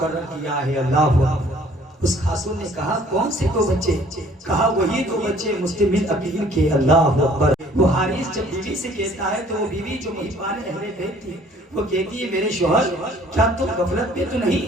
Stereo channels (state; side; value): normal; both; correlation 0.56